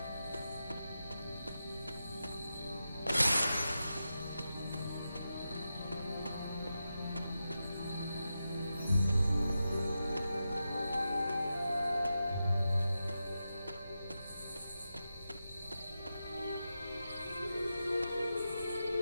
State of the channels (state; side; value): inverted; both; correlation -0.90